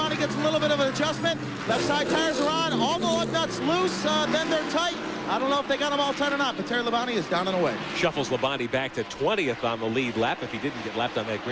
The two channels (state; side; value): identical; both; correlation 1.00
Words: gets a little bit of an adjustment. Left side tires are on. All the lug nuts loose. Then they're tight. I don't know if they got them all tight or not, but Terry Labonte is down and away. Shuffles Labonte back to 20th on the lead lap if he didn't get lapped on that